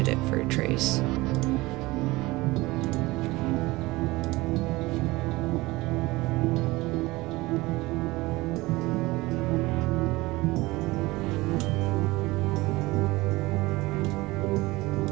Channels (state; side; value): quieter; left; 20.7 dB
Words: for a trace.